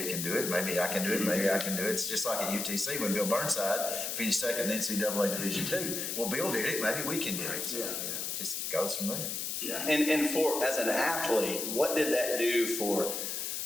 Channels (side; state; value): left; noise; hiss, 3 dB below the sound